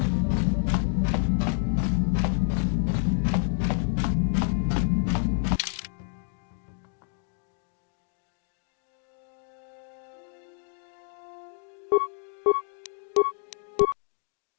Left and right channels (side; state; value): right; silent; digital silence